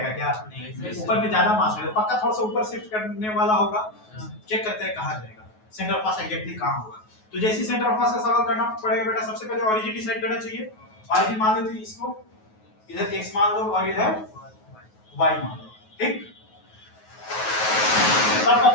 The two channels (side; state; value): right; late; 9.3 ms